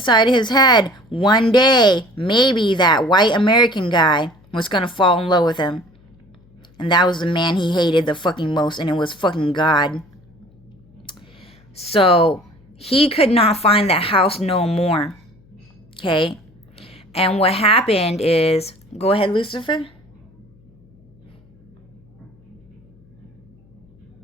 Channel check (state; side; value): noise; left; hum, 30 dB below the sound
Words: his head, one day, maybe that white American guy was going to fall in love with him. And that was the man he hated the fucking most, and it was fucking God. So he could not find that house no more. Okay? And what happened is, go ahead, Lucifer.